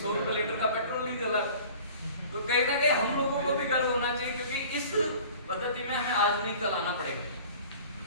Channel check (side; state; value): both; inverted; correlation -0.45